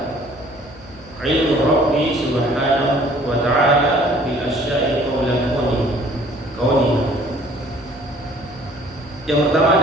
ilmu Rabbi subhanahu wa ta'ala bil asya'i qawlan kauni. Yang pertama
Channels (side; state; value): left; noise; hum, 23 dB below the sound